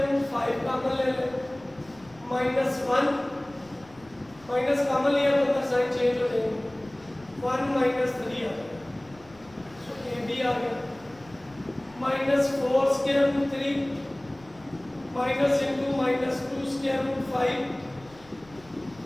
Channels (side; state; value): left; noise; rumble, 25 dB below the sound